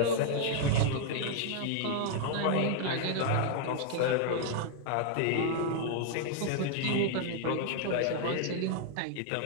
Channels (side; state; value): both; different; correlation 0.00